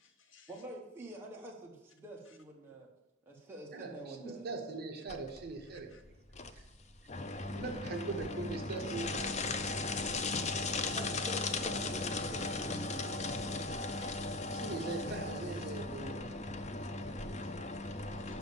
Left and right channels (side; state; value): both; normal; correlation 0.25